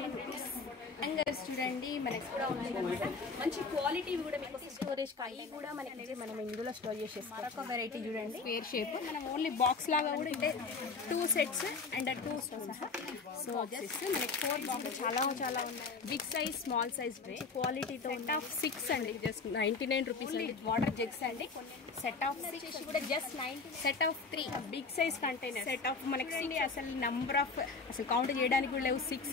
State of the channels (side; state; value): right; quieter; 4.5 dB